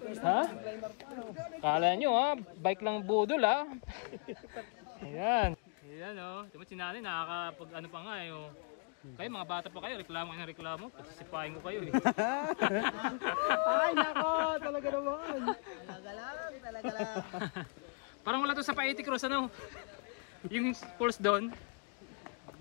Kala nyo ha, bike lang budol ha. Ayan. Ayan o, ito mo sinali, nakakapag ano pa nga eh o. Kayo mga bata pa kayo, reklamo kayo ng reklamo, pasisipahin ko kayo eh. Ay nako, talaga naman. Talaga lang. Parang wala to sa Paiti Cross ano. Yung falls doon.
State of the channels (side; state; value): right; quieter; 38.1 dB